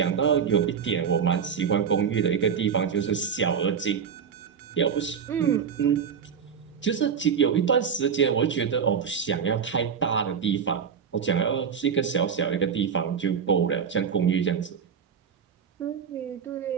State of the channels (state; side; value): quieter; left; 7.1 dB